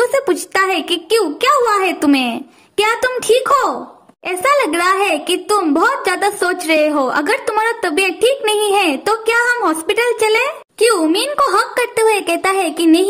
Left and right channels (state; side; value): identical; both; correlation 1.00